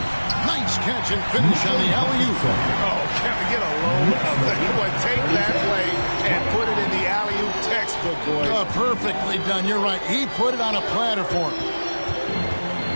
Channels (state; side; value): inverted; both; correlation -1.00